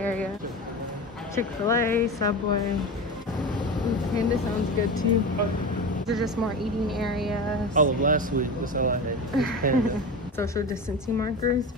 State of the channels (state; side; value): normal; both; correlation 0.26